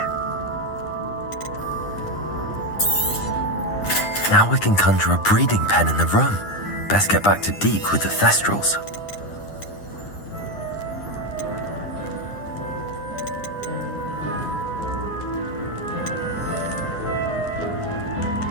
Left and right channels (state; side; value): late; right; 9.9 ms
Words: Now we can conjure a breeding pen in the room. Best get back to Deke with the Thestrals.